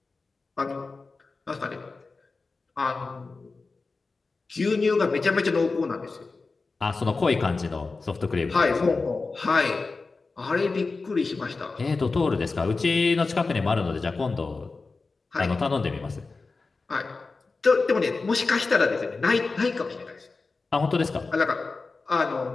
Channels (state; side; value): quieter; right; 3.9 dB